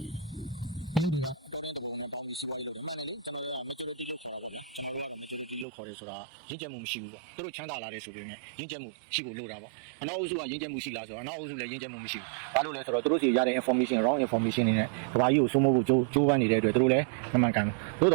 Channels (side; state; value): left; drops out; at 5.7 s